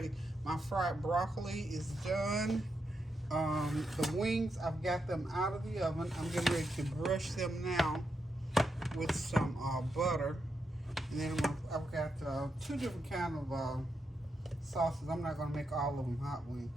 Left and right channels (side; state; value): both; normal; correlation 0.84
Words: My fried broccoli is done. The wings, I've got them out of the oven. I'm getting ready to brush them now with some butter. And then I've got 2 different kinds of sauces. I'm not going to make all of them hot wings.